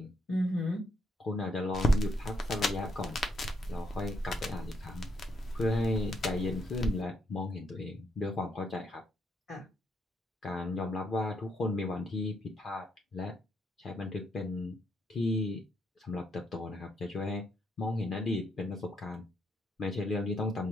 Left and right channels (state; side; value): normal; both; correlation 0.76